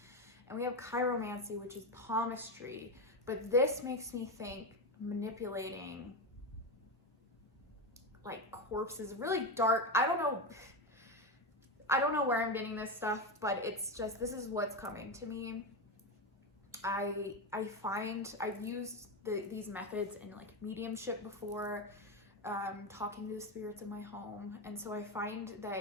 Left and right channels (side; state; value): both; normal; correlation 0.14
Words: And we have chiromancy, which is palmistry, but this makes me think manipulating like corpses, really dark. I don't know, I don't know where I'm getting this stuff, but it's just, this is what's coming to me. I find I've used these methods in like mediumship before, talking to the spirits in my home. And so I find